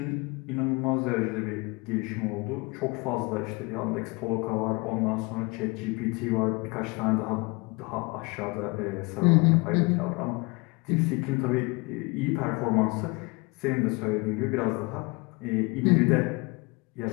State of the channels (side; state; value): right; quieter; 27.3 dB